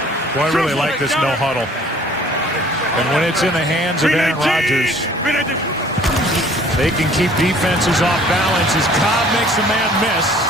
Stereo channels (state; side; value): normal; both; correlation 0.54